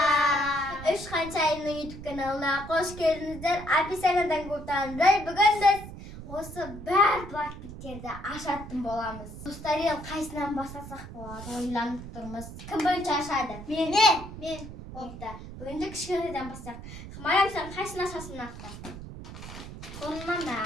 Үш қаншайымның YouTube каналына қош келдіңіздер. Описаниyaдан көрсеңіздер, бүгін біз осы бар блокбиттерді ашатын боламыз. Достар, қайсынан бастасақ болады? Ойланып тұрмыз. Кім бірінші ашады? Мен. Болыпты. Бүгінде кішкенеден бастайық. Марам, сен қайсыны ашасың нақты? Сонынан да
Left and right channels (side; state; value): right; noise; rumble, 12 dB below the sound